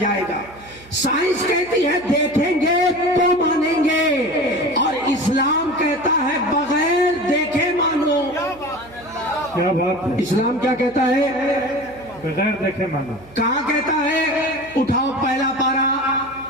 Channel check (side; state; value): right; noise; hum, 23 dB below the sound